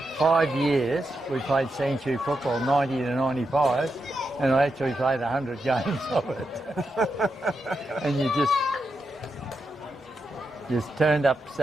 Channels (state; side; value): normal; both; correlation 0.86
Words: 5 years. We played sanctuary football, 90 to 95, and I actually played 100 games of it. And you just turned up